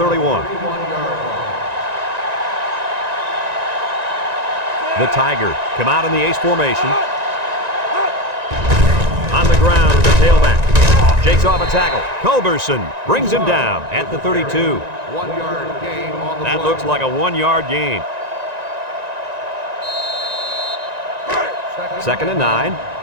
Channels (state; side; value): late; left; 1.9 ms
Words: The Tigers come out in the ace formation. On the ground with the tailback. Shakes off a tackle. Culberson brings him down at the 32. 1-yard gain on the play. That looks like a 1-yard gain. 2nd and 9.